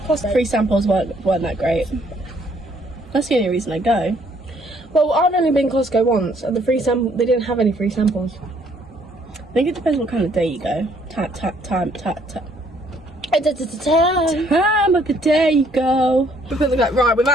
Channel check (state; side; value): normal; both; correlation 0.65